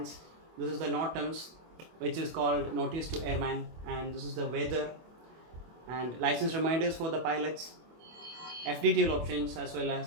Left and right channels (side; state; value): left; late; 24 ms